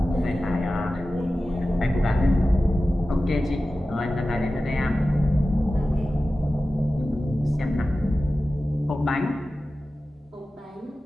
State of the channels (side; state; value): both; normal; correlation 0.95